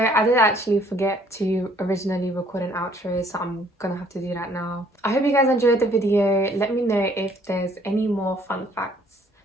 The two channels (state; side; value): normal; both; correlation 0.61